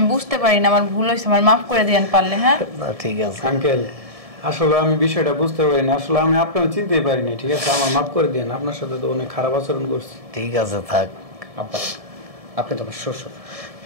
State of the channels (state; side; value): late; left; 1.7 ms